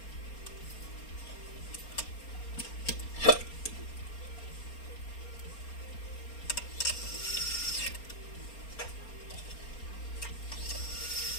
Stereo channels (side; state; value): right; late; 4.3 ms